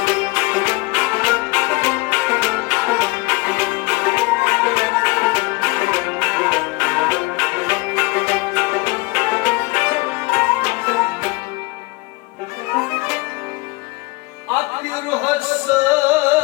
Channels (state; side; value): quieter; right; 23.8 dB